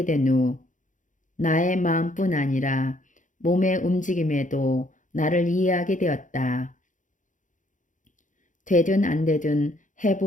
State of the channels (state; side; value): late; right; 0.37 ms